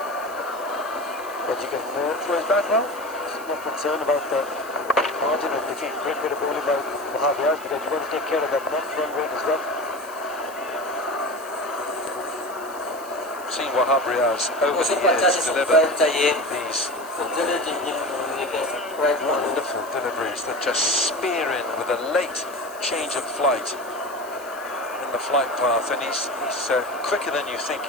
But you can throw his bat well. Not concerned about the margin of defeat. Great bit of bowling by Wahab Riaz because you want to take care of that net run rate as well. Seen Wahab Riaz over the years deliver these wonderful deliveries that just spear in with a late change of flight in the flight path, and he's quicker than you think.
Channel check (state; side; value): noise; right; hiss, 18 dB below the sound